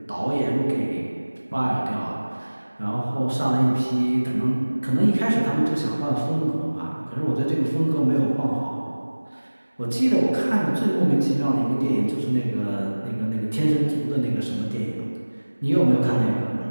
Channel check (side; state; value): both; inverted; correlation -1.00